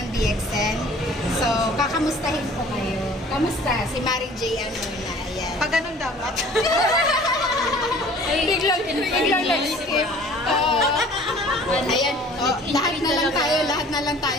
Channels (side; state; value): both; normal; correlation 0.49